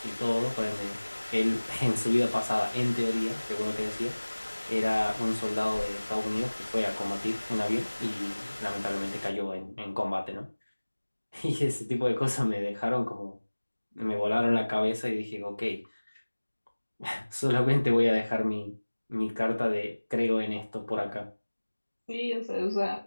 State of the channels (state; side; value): inverted; both; correlation -1.00